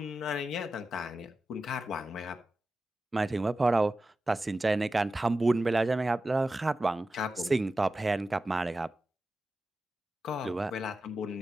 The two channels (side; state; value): both; normal; correlation 0.93